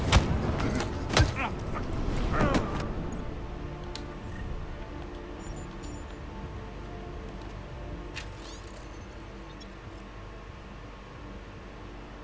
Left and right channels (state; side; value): identical; both; correlation 1.00